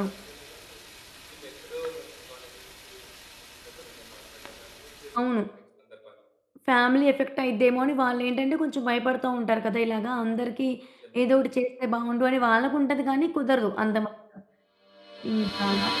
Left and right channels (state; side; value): identical; both; correlation 1.00